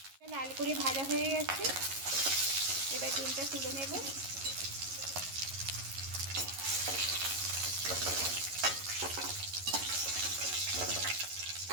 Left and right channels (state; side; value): late; left; 11 ms